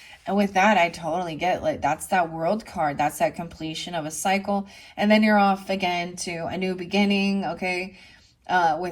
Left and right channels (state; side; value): identical; both; correlation 1.00